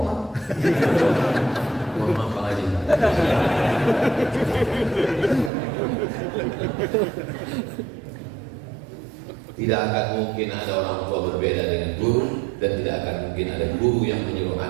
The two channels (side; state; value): left; drops out; at 5.5 s